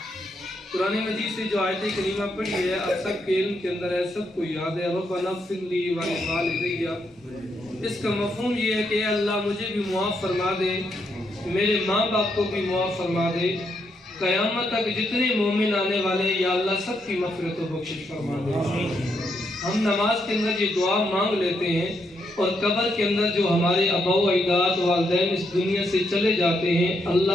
قرآن مجید سے جو آیت کریمہ پڑھی ہے آپ سب کے علم کے اندر ہے سب کو یاد ہے ربنا اغفر لی ولوالدی. اس کا مفہوم یہ ہے کہ اے اللہ مجھے بھی معاف فرما دے میرے ماں باپ کو بھی معاف فرما دے قیامت تک جتنے مومن آنے والے یا اللہ سب کی مغفرت و بخشش فرما دے. ہم نماز کے اندر یہ دعا مانگ لیتے ہیں اور قبر کے اندر جو ہمارے آباء و اجداد والدین اس دنیا سے چلے جاتے ہیں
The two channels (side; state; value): both; normal; correlation 0.78